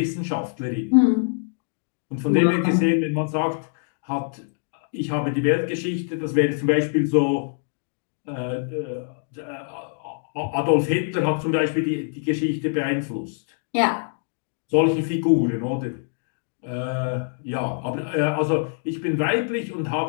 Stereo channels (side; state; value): right; silent; digital silence